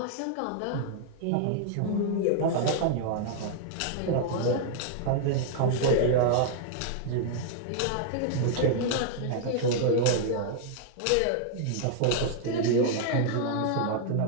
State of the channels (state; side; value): different; both; correlation -0.01